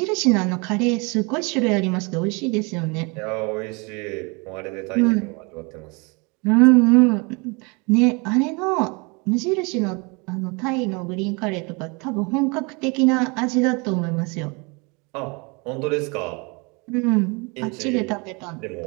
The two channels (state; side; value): quieter; left; 29.9 dB